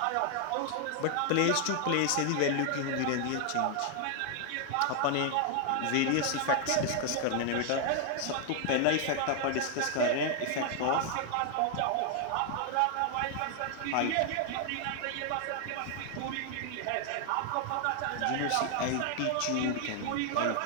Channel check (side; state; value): both; different; correlation 0.00